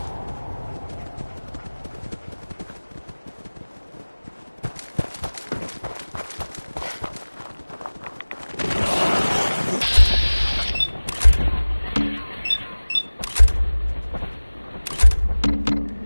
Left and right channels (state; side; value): inverted; both; correlation -1.00